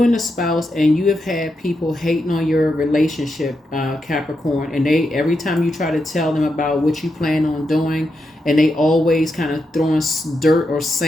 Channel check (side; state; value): both; normal; correlation 0.85